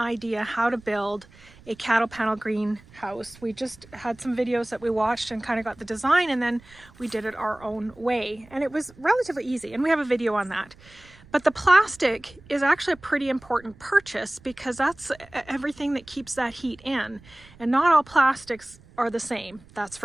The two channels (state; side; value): noise; right; rumble, 24 dB below the sound